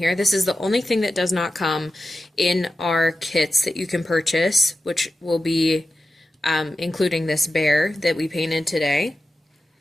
This is the only thing that does not come in our kits that you can purchase, which will be including this bear that we painted today.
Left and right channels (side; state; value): both; normal; correlation 0.91